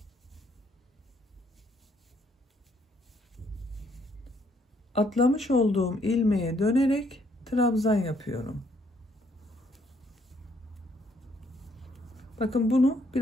Atlamış olduğum ilmeğe dönerek trabzan yapıyorum. Bakın bunu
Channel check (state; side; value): normal; both; correlation 0.68